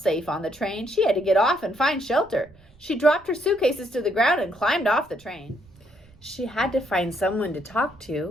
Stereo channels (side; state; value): right; noise; rumble, 28 dB below the sound